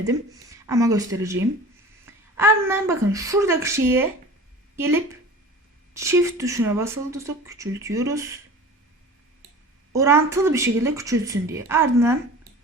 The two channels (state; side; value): normal; both; correlation 0.39